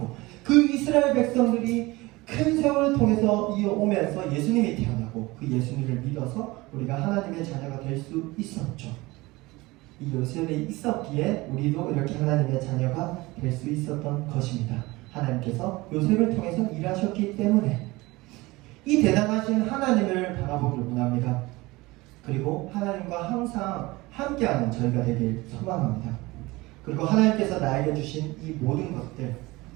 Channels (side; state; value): left; quieter; 21.4 dB